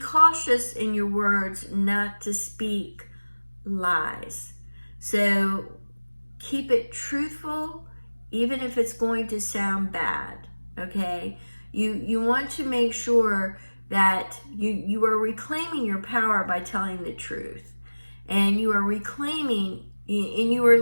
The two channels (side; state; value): both; inverted; correlation -1.00